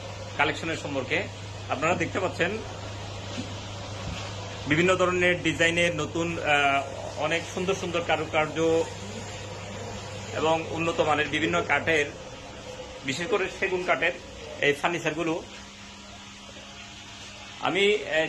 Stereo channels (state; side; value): identical; both; correlation 1.00